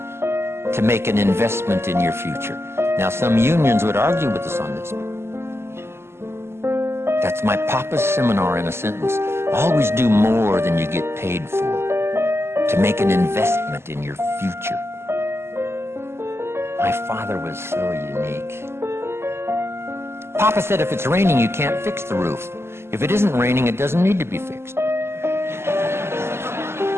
to make an investment in your future. Now, some unions would argue with us on this. That's my papa's seminar in a sentence. Always do more than you get paid for to make an investment in your future. My father was so unique. Papa said if it's raining, you can't fix the roof. If it isn't raining, it doesn't need to be fixed.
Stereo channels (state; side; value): late; left; 0.12 ms